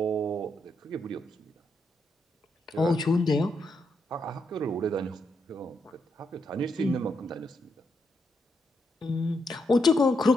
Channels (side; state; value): both; normal; correlation 0.80